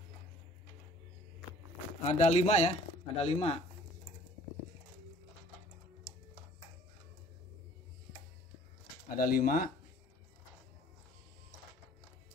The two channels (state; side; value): normal; both; correlation 0.54